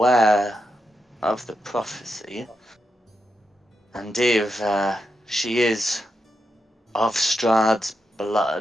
of the prophecy, and if she is of Strahd's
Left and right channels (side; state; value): both; normal; correlation 0.85